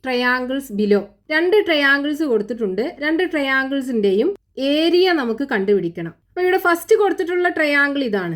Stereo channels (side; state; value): both; identical; correlation 1.00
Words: triangles below. രണ്ട് ട്രയാങ്കിൾസ് കൊടുത്തിട്ടുണ്ട്. രണ്ട് ട്രയാങ്കിൾസിൻ്റെയും ഏരിയ നമുക്ക് കണ്ടുപിടിക്കണം. അപ്പോൾ ഇവിടെ ഫസ്റ്റ് കൊടുത്തിട്ടുള്ള ട്രയാങ്കിൾ